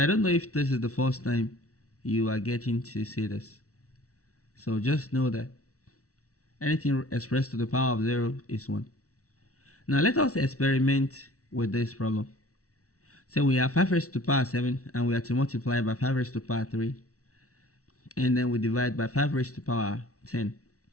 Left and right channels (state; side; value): late; right; 0.65 ms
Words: I don't know if this is the first time you are getting to see this. So just know that anything expressed to the power of 0 is 1. Now let us experiment with this problem. So we have 5 raised to the power 7 and we are to multiply by 5 raised to the power 3. And then we divide by 5 raised to the power 10.